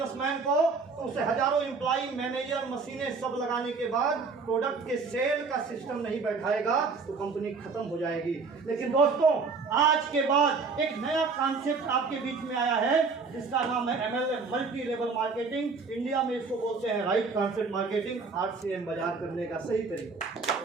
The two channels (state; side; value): quieter; left; 4.6 dB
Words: को तो उसे हजारों एम्प्लॉय, मैनेजर, मशीनें सब लगाने के बाद प्रोडक्ट के सेल का सिस्टम नहीं बैठाएगा तो कंपनी खत्म हो जाएगी। लेकिन दोस्तों आज के बाद एक नया कॉन्सेप्ट आपके बीच में आया है जिसका नाम है MLM, multi level marketing. India में इसको बोलते हैं राइट कॉन्सेप्ट मार्केटिंग, RCM बाजार करने का सही तरीका।